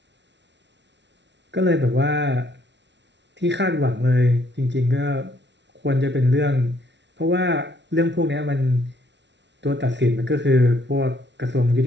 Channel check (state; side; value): late; left; 0.51 ms